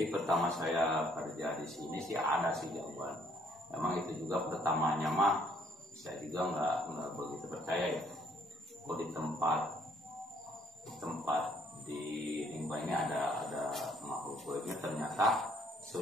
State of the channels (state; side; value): normal; both; correlation 0.65